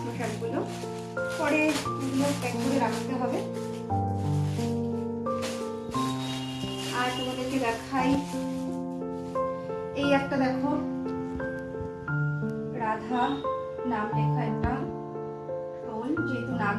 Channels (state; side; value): identical; both; correlation 1.00